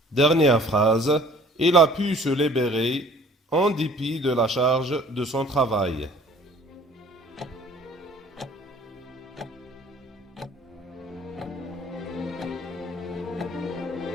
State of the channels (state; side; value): normal; both; correlation 0.52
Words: Dernière phrase, il a pu se libérer en dépit de la charge de son travail.